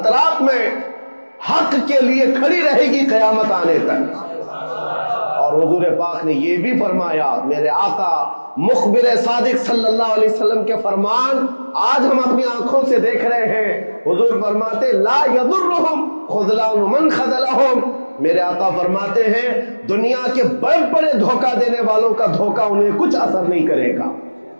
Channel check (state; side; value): inverted; both; correlation -1.00